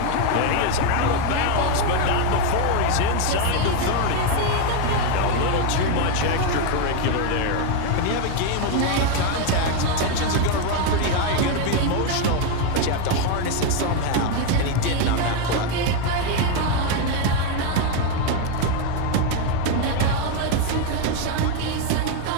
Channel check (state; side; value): different; both; correlation 0.02